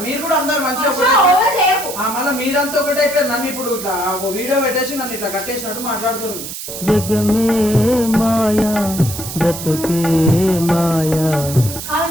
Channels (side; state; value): right; noise; hiss, 8 dB below the sound